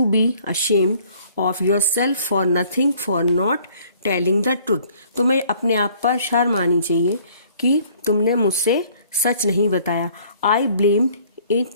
be ashamed of yourself for nothing, for not telling the truth. तुम्हें अपने आप पर शर्म आनी चाहिए कि तुमने मुझसे सच नहीं बताया. I blamed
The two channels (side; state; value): both; inverted; correlation -0.58